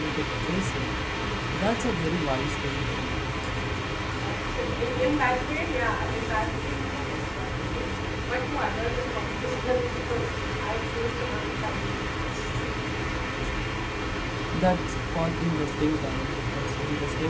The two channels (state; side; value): identical; both; correlation 1.00